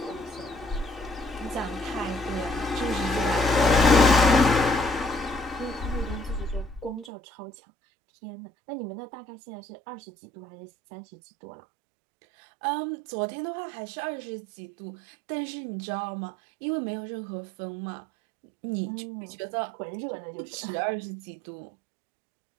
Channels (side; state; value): left; drops out; at 7.1 s